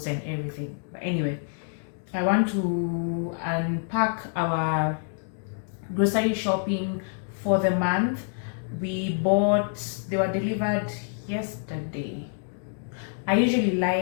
and everything. But anyway, I want to unpack our grocery shopping for the month. They were delivered yesterday. I usually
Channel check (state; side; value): silent; right; 60 dB below the other